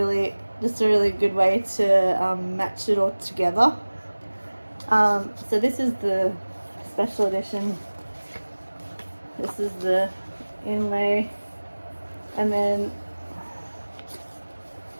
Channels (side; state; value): both; inverted; correlation -1.00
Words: just a really good way to match it all together. So this is the special edition. This is the inlay, and then